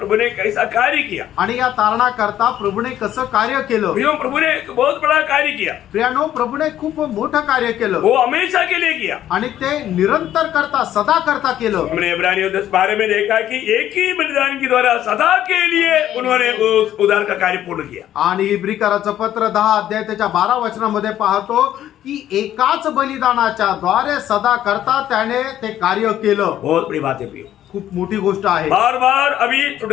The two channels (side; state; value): right; quieter; 11.8 dB